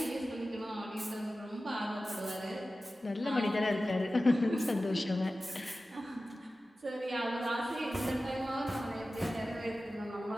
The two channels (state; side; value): normal; both; correlation 0.95